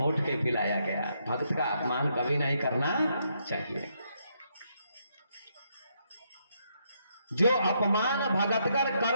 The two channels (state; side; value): inverted; both; correlation -0.76